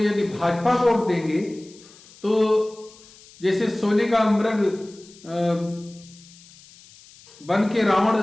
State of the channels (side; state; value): left; noise; hiss, 24 dB below the sound